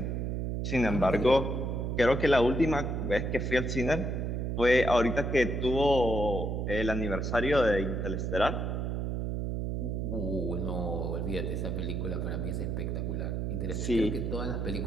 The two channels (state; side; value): noise; right; hum, 1 dB below the sound